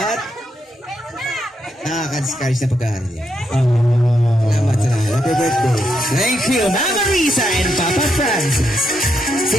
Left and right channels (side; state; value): both; normal; correlation 0.80